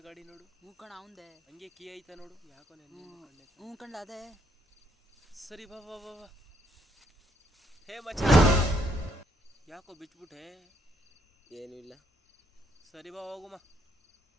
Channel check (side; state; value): both; normal; correlation 0.71